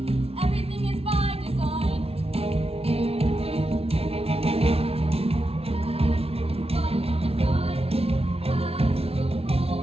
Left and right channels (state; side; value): late; left; 0.29 ms